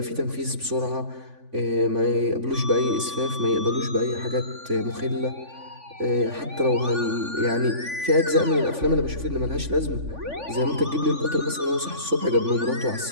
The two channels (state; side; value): late; left; 3.5 ms